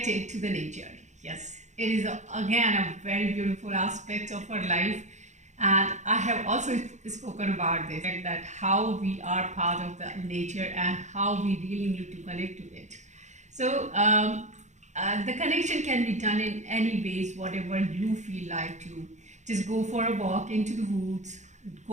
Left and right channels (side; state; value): left; late; 0.34 ms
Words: to the nature. Yes, it is again a very beautiful aspect of our life, and I have also spoken about this, that how we are part of the nature and how we really need to connect to it. So the connection can be done in any ways, whatever you feel like to. Just go for a walk into the woods,